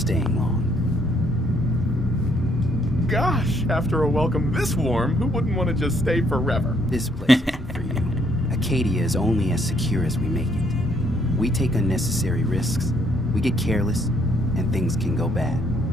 long. Gosh, after a welcome this warm, who wouldn't want to just stay forever? This place isn't for you. Acadia is only as secure as we make it. We take unnecessary risks, we get careless, and things can go bad.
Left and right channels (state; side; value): normal; both; correlation 0.69